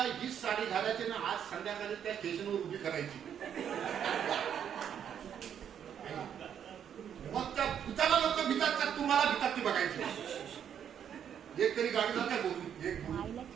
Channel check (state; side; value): quieter; left; 8.8 dB